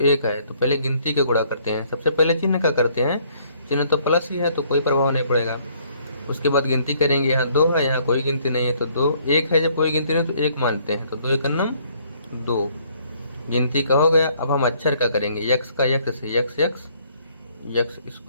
1 है, तो पहले गिनती का गुणा करते हैं। सबसे पहले चिन्ह का करते हैं, चिन्ह तो प्लस ही है तो कोई प्रभाव नहीं पड़ेगा। उसके बाद गिनती करेंगे, यहाँ 2 है, यहाँ कोई गिनती नहीं है तो 2, 1 है, जब कोई गिनती नहीं तो 1 मानते हैं, तो 2 1 नम 2, गिनती का हो गया। अब हम अक्षर का करेंगे, x का x से, x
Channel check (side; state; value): both; inverted; correlation -0.64